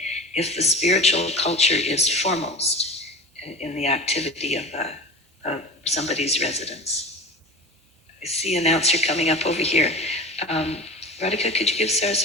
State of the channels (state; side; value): normal; both; correlation 0.34